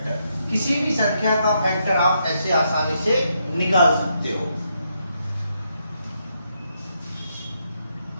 किसी भी संख्या का फैक्टर आप ऐसे आसानी से निकाल सकते हो।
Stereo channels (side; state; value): both; inverted; correlation -0.78